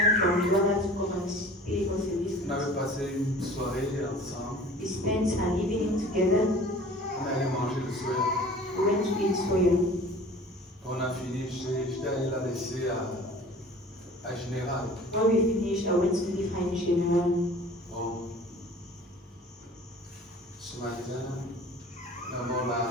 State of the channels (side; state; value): both; normal; correlation 0.45